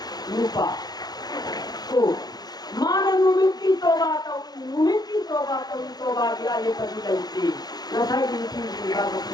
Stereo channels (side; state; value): right; late; 0.19 ms